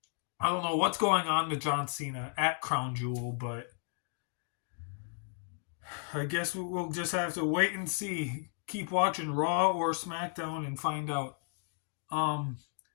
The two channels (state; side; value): silent; right; 55 dB below the other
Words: I don't know what's going on with John Cena at Crown Jewel, but I guess we'll just have to wait and see. Keep watching Raw or SmackDown and find out.